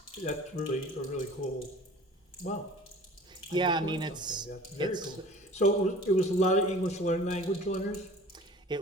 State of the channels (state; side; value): normal; both; correlation 0.45